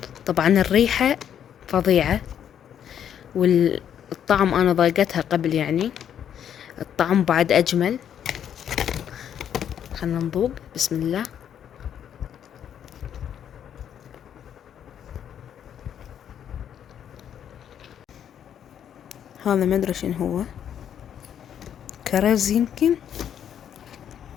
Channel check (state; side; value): quieter; right; 9.3 dB